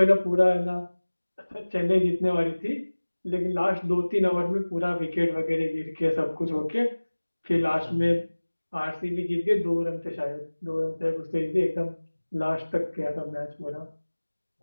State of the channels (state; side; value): inverted; both; correlation -1.00